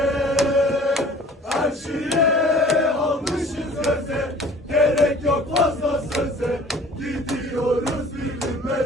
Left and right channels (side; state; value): both; normal; correlation 0.49